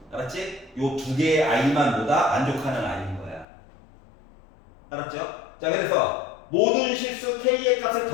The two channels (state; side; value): drops out; right; at 3.5 s